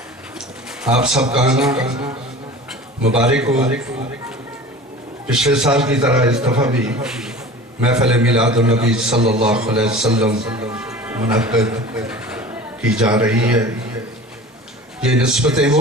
آپ سب کا آنا مبارک ہو۔ پچھلے سال کی طرح اس دفعہ بھی محفل میلاد النبی صلی اللہ علیہ وسلم منعقد کی جا رہی ہے۔ یہ نسبتیں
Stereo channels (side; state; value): both; normal; correlation 0.39